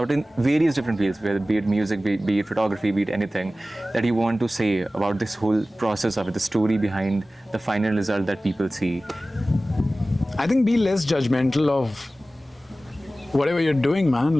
in various different fields, whether be it music, be it photography, be it anything, that you want to say about this whole process of it, the story behind the final result that people see? I think be less judgmental of whatever you're doing, man.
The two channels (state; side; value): normal; both; correlation 0.96